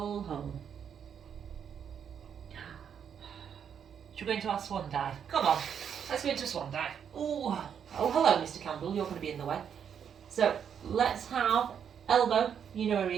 Should we go into our swan dive? Come on, let's go into a swan dive. Ooh. Oh, hello, Mr. Campbell, you're going to be in the way. So, let's have elbow, you know where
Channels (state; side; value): quieter; left; 8.0 dB